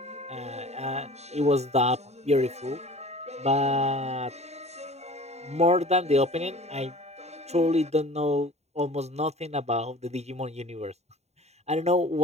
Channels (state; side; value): late; left; 0.32 ms